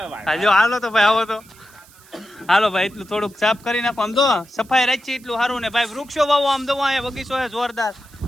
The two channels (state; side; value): noise; right; hiss, 25 dB below the sound